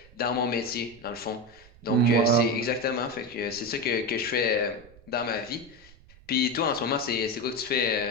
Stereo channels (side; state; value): right; noise; rumble, 24 dB below the sound